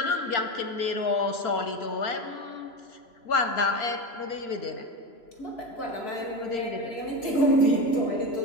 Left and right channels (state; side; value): late; right; 3.0 ms